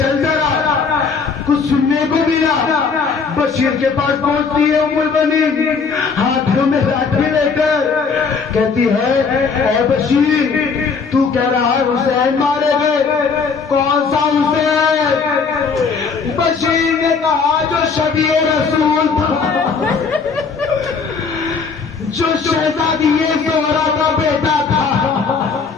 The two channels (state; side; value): quieter; right; 5.2 dB